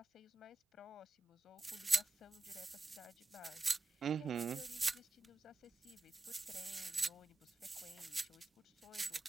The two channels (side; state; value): left; quieter; 3.3 dB